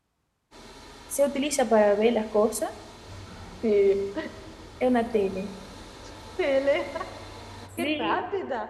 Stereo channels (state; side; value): identical; both; correlation 1.00